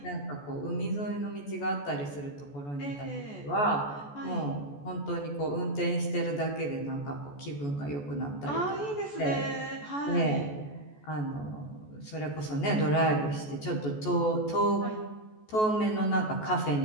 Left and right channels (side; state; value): right; late; 14 ms